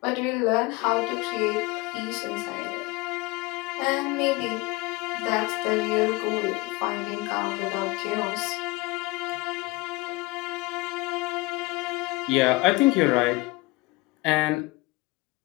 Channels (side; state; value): right; quieter; 22.8 dB